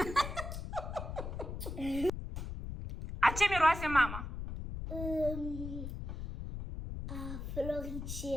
A ce miroase mama? A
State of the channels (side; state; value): left; noise; rumble, 6 dB below the sound